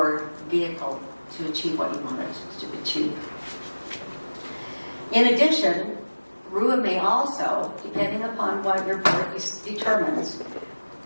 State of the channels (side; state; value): both; inverted; correlation -1.00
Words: vehicle to achieve what you want it to achieve. In addition, RUA may also, depending upon what your board determines,